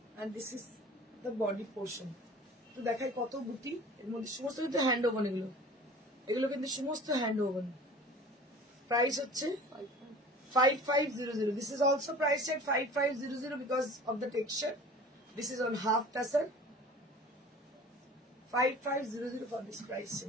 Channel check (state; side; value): normal; both; correlation 0.43